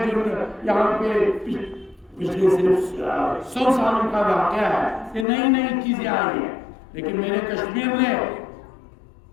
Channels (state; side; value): drops out; right; at 5.2 s